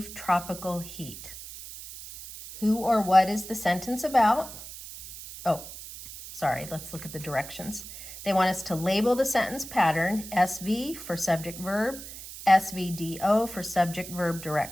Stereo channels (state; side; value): noise; right; hiss, 13 dB below the sound